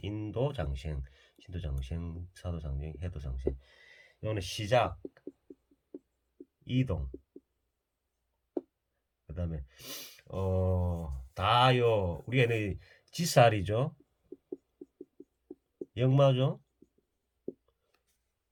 인도 장생, 신도 장생, 사도 장생, 해도 장생. 이거는 시작, 이동. 그 다음에 다요. 우리가 지살이죠. 역마죠.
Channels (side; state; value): both; identical; correlation 1.00